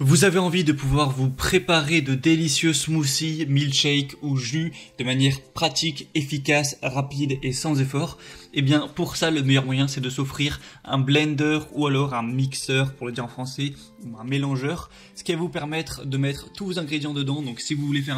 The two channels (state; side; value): identical; both; correlation 1.00